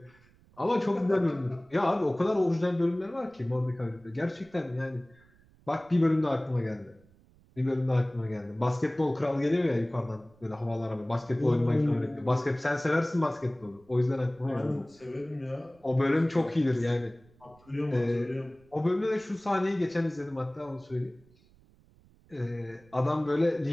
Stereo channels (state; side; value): noise; right; rumble, 29 dB below the sound